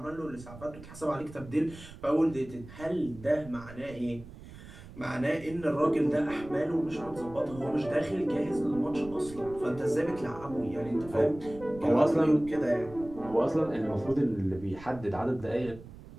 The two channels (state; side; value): noise; right; rumble, 17 dB below the sound